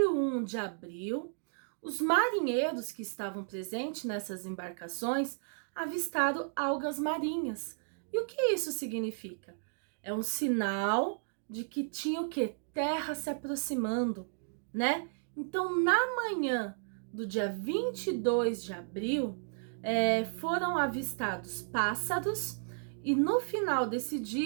de abril, os marinheiros que estavam presentes nessas embarcações avistaram algas marinhas. E o que isso significa? É um sinal de que tinha o quê? Terra se aproximando, né? Então, na manhã do dia 22 de abril, foram avistados pássaros e no final desse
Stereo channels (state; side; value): silent; left; digital silence